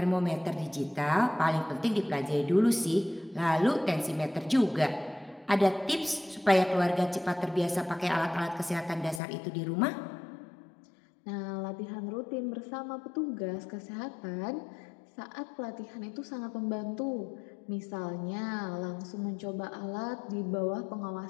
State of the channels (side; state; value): right; drops out; at 9.2 s